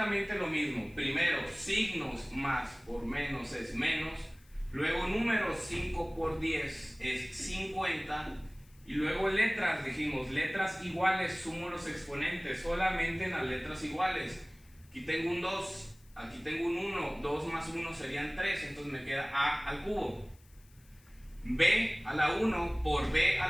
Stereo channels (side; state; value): left; noise; hiss, 29 dB below the sound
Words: lo mismo. Primero, signos más por menos es menos. Luego, números, 5 por 10 es 50. Y luego letras, dijimos, letras iguales, sumo los exponentes solamente en las letras iguales. Aquí tengo un 2, aquí tengo un 1, 2 más 1 serían 3, entonces me queda a al cubo. B a la 1 por B a